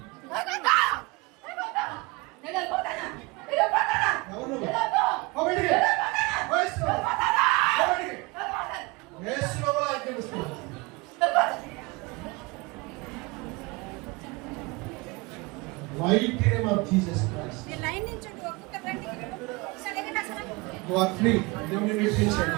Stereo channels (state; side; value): quieter; left; 25.3 dB